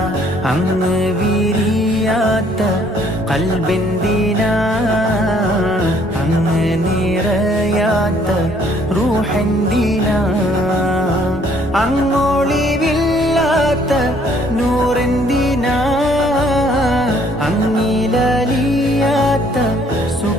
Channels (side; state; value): both; normal; correlation 0.62